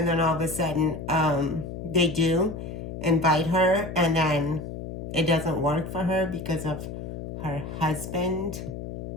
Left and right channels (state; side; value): noise; left; hum, 8 dB below the sound